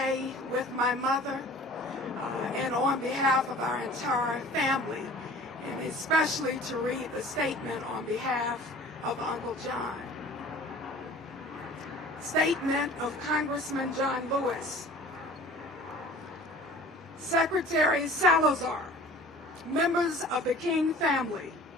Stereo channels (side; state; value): both; normal; correlation 0.45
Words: with my mother and on behalf of our entire family, and especially to read the statement on behalf of Uncle John. Statement of Congressman John Lewis. Secretary Salazar, members of the King family,